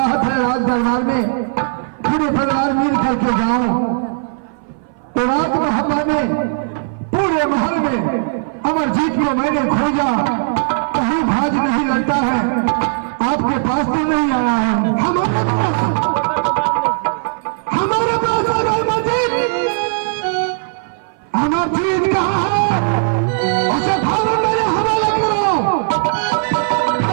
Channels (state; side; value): silent; left; 58 dB below the other